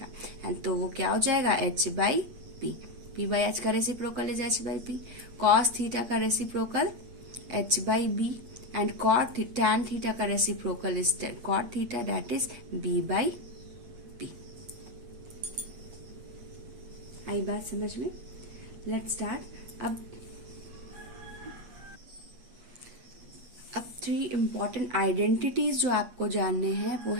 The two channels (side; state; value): left; late; 8.4 ms